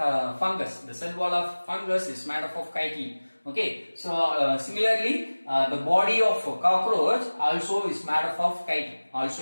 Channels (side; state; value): both; inverted; correlation -1.00